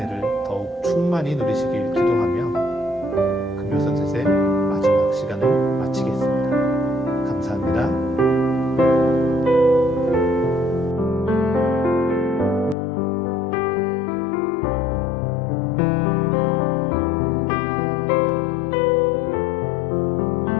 더욱 충만히 누리시길 기도하며 금요 선셋의 마지막 시간을 마치겠습니다.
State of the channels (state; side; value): drops out; right; at 12.8 s